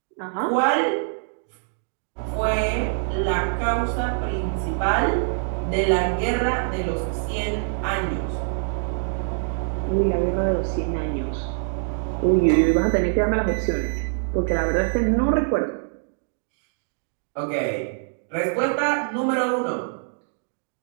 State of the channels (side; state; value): left; silent; digital silence